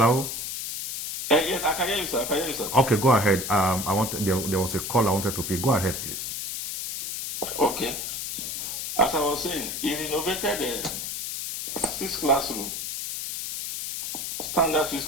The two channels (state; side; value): noise; left; hiss, 5 dB below the sound